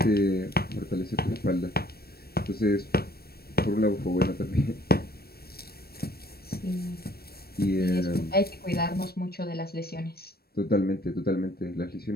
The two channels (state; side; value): late; right; 0.45 ms